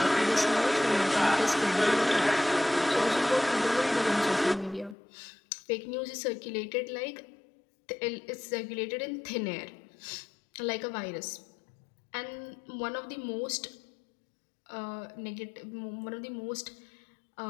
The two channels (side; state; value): right; drops out; at 5.0 s